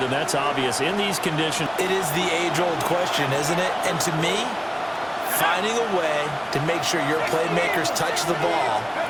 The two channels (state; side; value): identical; both; correlation 1.00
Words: them, that's obvious. In these conditions, it is the age-old question, isn't it? And to me, finding a way to make sure your playmakers touch the ball